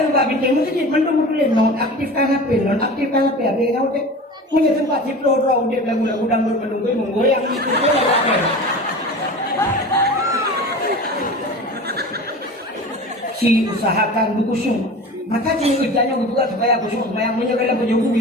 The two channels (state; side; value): normal; both; correlation 0.35